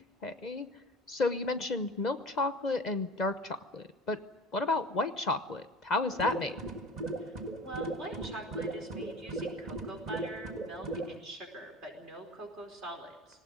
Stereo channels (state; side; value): normal; both; correlation 0.38